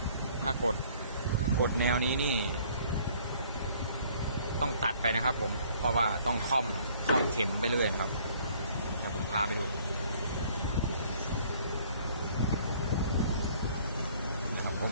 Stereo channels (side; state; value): both; inverted; correlation -0.58